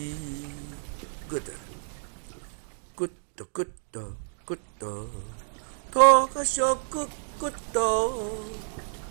骨头。骨头骨头骨头，头壳上骨骨头，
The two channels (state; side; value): silent; left; digital silence